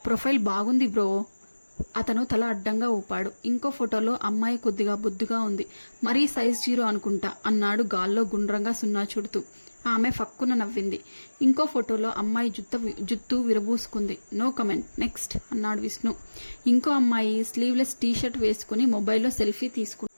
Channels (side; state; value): both; inverted; correlation -1.00